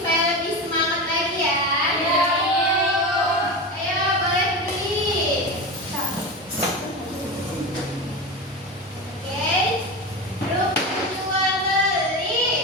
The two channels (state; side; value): normal; both; correlation 0.23